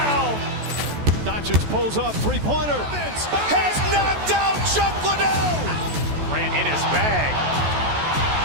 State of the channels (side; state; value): left; late; 14 ms